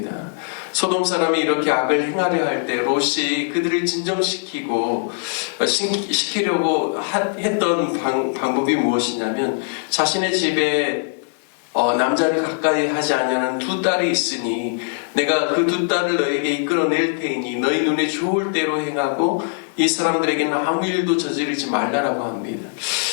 소돔 사람이 이렇게 악을 행하려 할 때 롯이 그들을 진정시키고 시키려고 했던 방법이 무엇이냐면 자신의 집에 남자를 가까이 하지 않냐는 두 딸이 있으니 내가 그 두 딸을 너에게 이끌어낼 테이니 너희 눈에 좋을 대로 행하고 이 사람들에게는 아무 일도 저지르지 말라라고 합니다.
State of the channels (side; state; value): right; silent; 61 dB below the other